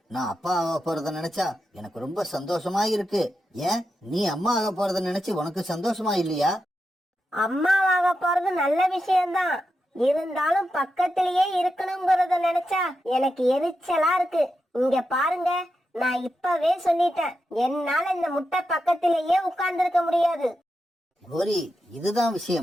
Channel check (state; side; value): normal; both; correlation 0.88